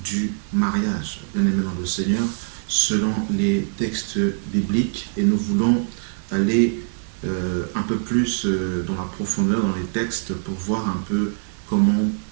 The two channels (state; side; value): silent; left; digital silence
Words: mariage, bien-aimé dans le Seigneur, selon les textes bibliques, et nous voulons aller un peu plus dans la profondeur, dans les textes, pour voir un peu comment